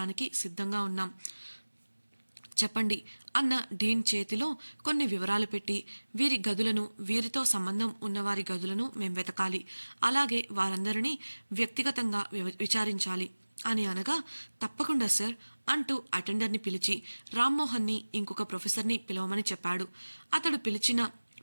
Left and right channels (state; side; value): inverted; both; correlation -1.00